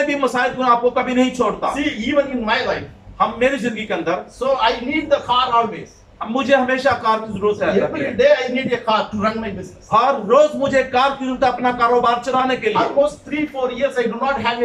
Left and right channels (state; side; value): identical; both; correlation 1.00